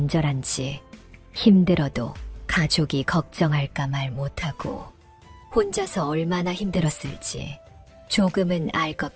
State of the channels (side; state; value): both; identical; correlation 1.00